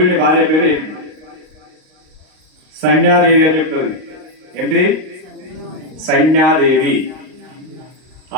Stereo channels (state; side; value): late; left; 38 ms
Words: భార్య పేరు ఏమిటి? సంజ్ఞాదేవి అని చెప్తుంది. ఏంటి? సంజ్ఞాదేవి.